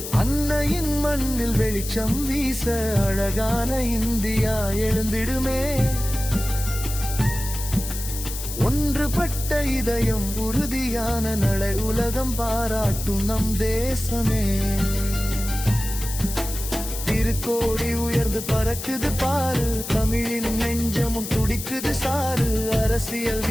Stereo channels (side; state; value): left; noise; hiss, 8 dB below the sound